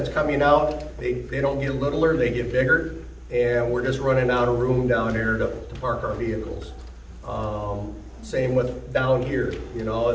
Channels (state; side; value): identical; both; correlation 1.00